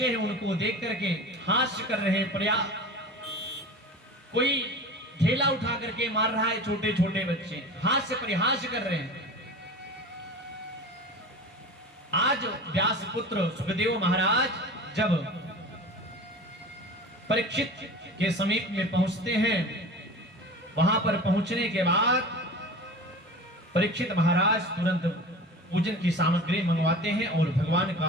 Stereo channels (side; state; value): both; normal; correlation 0.35